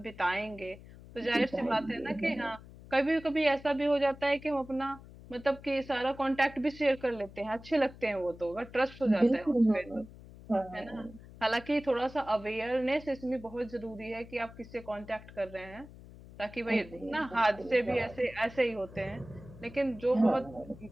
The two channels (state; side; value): noise; left; hum, 18 dB below the sound